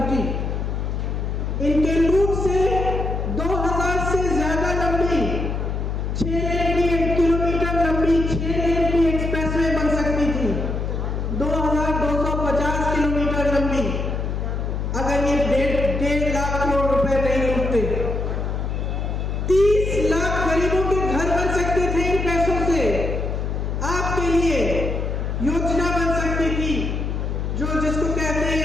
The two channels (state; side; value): noise; left; hum, 2 dB below the sound